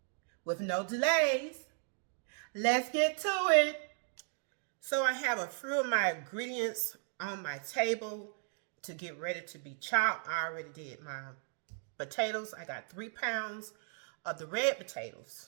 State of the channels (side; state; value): left; silent; 54 dB below the other